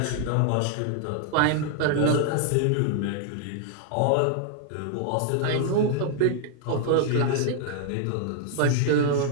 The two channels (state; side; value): different; both; correlation 0.00